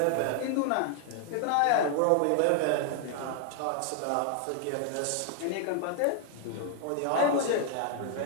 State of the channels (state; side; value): different; both; correlation 0.00